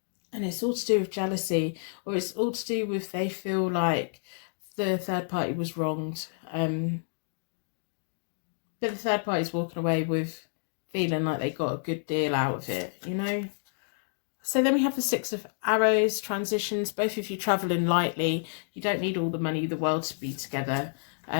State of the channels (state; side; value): silent; right; digital silence